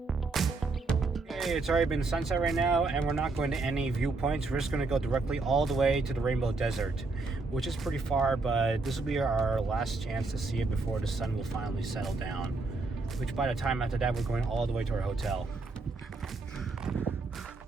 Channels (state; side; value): quieter; left; 3.7 dB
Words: Okay, it's already been sunset right now, and we're not going to any viewpoints. We're just going to go directly all the way to the Rainbow Desert, which is pretty far, but this will be our last chance to see it before the sun will finally settle down, which by the time after that, we're going all the way to our hotel.